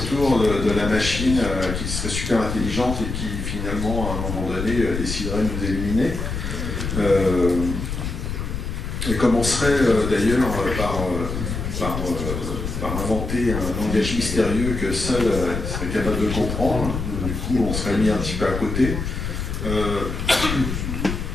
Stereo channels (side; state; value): left; noise; rumble, 4 dB below the sound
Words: de la machine qui serait super intelligente et qui finalement à un moment donné déciderait de nous éliminer. Et commencerait d'ailleurs par inventer un langage mystérieux que seul serait capable de comprendre. Du coup, on serait mis un petit peu à côté.